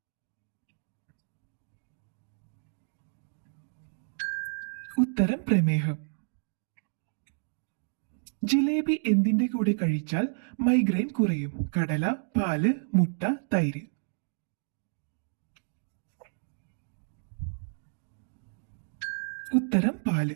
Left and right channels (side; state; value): left; silent; digital silence